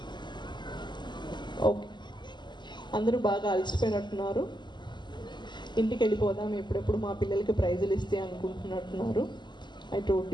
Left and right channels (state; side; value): late; right; 0.21 ms